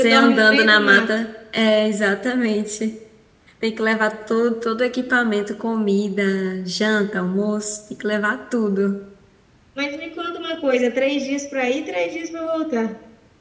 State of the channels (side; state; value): both; identical; correlation 1.00